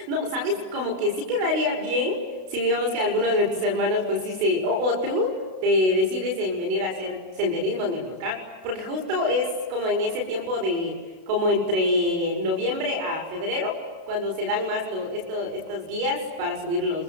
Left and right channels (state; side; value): late; left; 32 ms